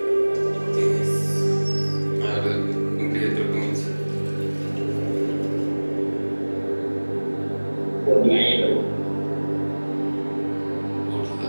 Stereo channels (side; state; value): both; inverted; correlation -1.00